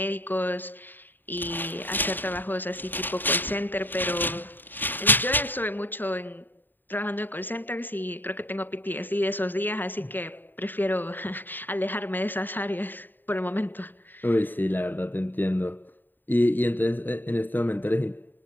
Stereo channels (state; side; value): late; right; 0.092 ms